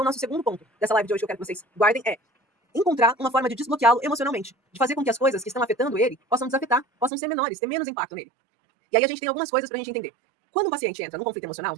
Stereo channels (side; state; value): left; drops out; at 7.1 s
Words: nosso segundo ponto dessa live de hoje que eu quero que vocês guardem é encontrar uma forma de desbloqueá-lo emocionalmente, de fazer com que as coisas que estão afetando ele possam desafetar, possam ser menores, ter menos impacto nele. E aí a gente tem algumas coisas pra gente entender. Quando o paciente entra no conflito emocional,